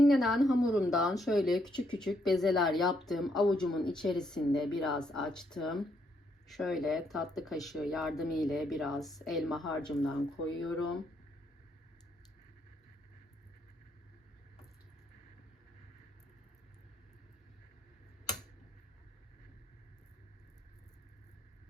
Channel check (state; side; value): normal; both; correlation 0.74